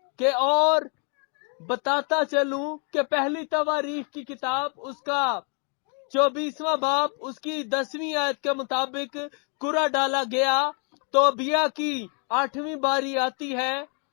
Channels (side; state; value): right; quieter; 36.8 dB